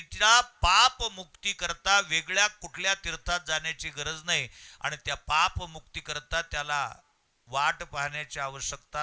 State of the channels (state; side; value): identical; both; correlation 1.00